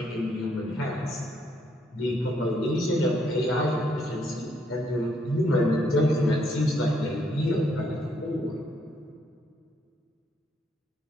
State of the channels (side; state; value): both; normal; correlation 0.72